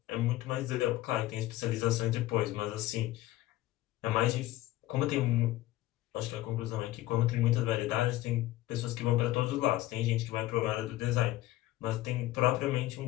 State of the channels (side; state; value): right; quieter; 16.1 dB